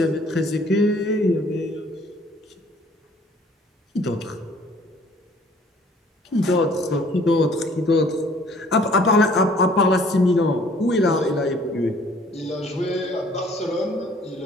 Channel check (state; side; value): normal; both; correlation 0.57